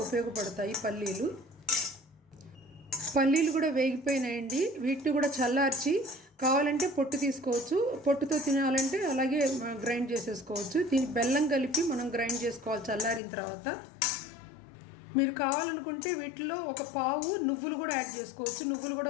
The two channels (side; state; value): right; drops out; at 13.2 s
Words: ఉపయోగపడతాయి పల్లీలు కూడా వేగిపోయినాయండి. వీటిని కూడా చల్లార్చి కావాలంటే పొట్టు తీసుకోవచ్చు, పొట్టుతో తినాలంటే అలాగే గ్రైండ్ చేసేసుకోవచ్చు. దీనికి బెల్లం కలిపి మనం గ్రైండ్ చేసుకోవాలి చల్లారిన తర్వాత. మీరు కావాలనుకుంటే వీటిలో ఒక పావు నువ్వులు కూడా యాడ్ చేసుకోవచ్చు. నువ్వులు